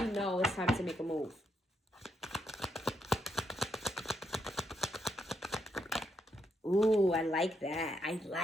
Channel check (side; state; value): both; normal; correlation 0.78